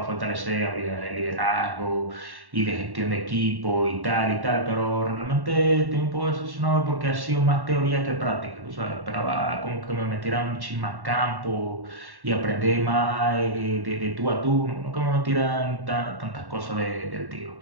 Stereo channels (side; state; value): left; late; 1.1 ms